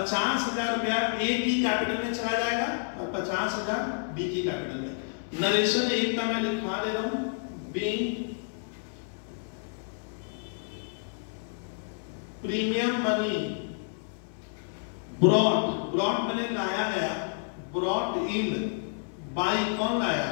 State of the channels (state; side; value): silent; right; 58 dB below the other